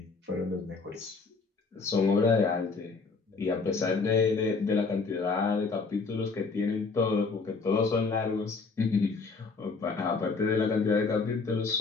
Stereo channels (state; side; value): quieter; right; 4.4 dB